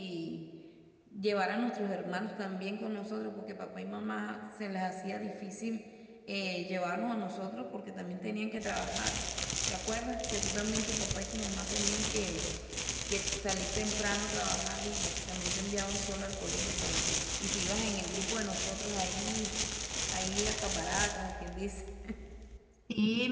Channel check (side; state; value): both; identical; correlation 1.00